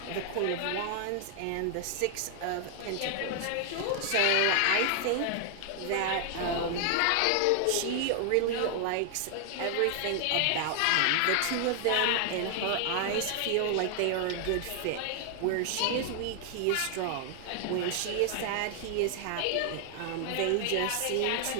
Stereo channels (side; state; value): both; different; correlation 0.00